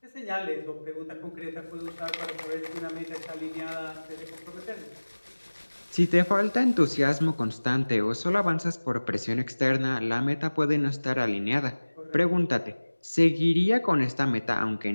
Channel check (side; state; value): both; inverted; correlation -1.00